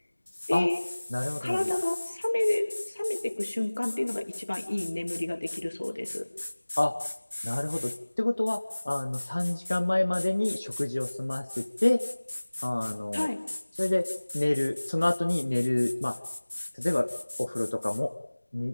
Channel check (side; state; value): both; inverted; correlation -1.00